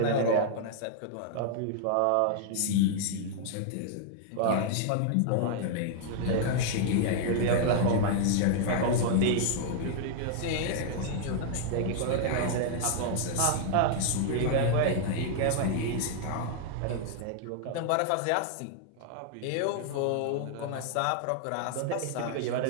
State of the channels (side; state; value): both; different; correlation 0.00